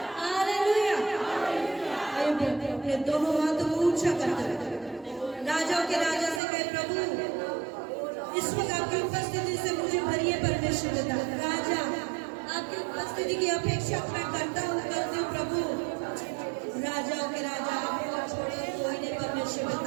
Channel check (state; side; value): drops out; left; at 6.4 s